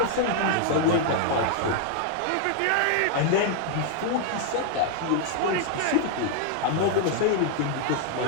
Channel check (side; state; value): both; different; correlation 0.00